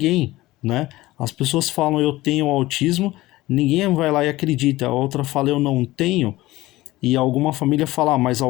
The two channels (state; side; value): quieter; right; 18.1 dB